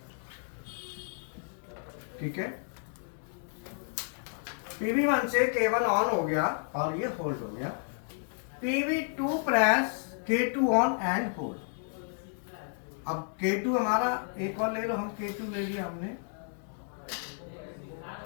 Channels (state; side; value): silent; right; 57 dB below the other